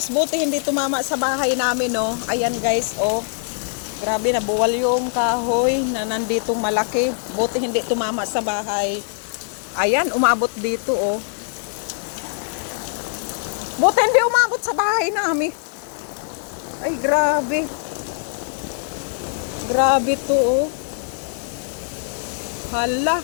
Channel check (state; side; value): silent; right; digital silence